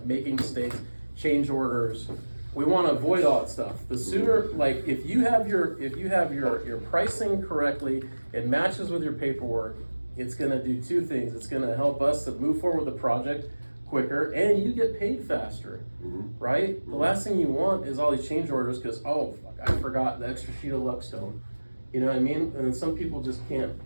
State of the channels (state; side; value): inverted; both; correlation -1.00